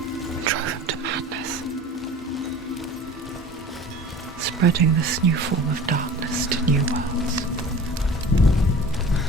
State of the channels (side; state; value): both; normal; correlation 0.40